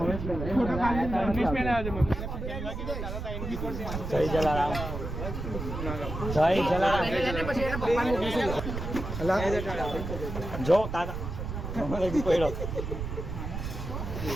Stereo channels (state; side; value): noise; right; rumble, 5 dB below the sound